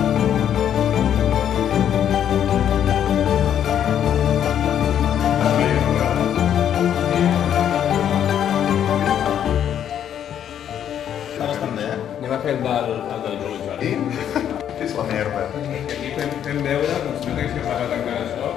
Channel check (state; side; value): quieter; right; 9.7 dB